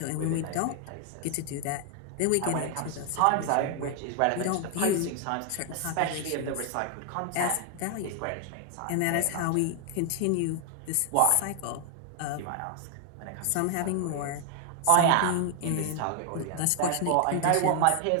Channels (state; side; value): different; both; correlation 0.00